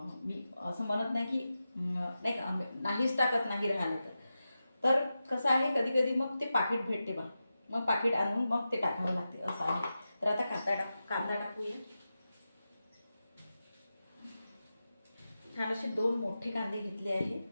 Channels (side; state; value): both; inverted; correlation -0.92